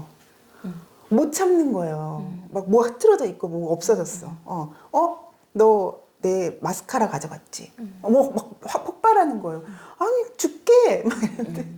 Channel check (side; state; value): both; identical; correlation 1.00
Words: 못 참는 거예요. 막 뭐 흐트러져 있고 뭐 없어졌어. 너 내 마스카라 가져갔지. 막 폭발하는 거예요. 아니 죽게 막 이러는데.